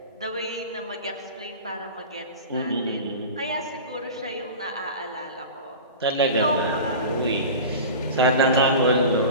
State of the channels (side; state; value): both; inverted; correlation -0.33